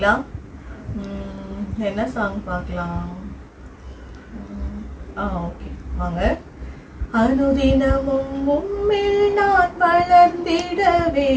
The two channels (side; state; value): both; identical; correlation 1.00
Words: என்ன சாங் பார்க்கலாம்? ஓகே, வாங்க. அனுதினமும் உம்மில் நான் வளர்ந்திடவே